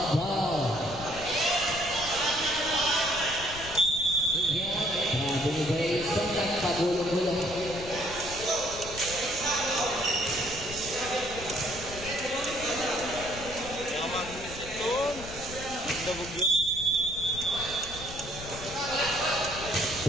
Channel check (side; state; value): left; noise; rumble, 13 dB below the sound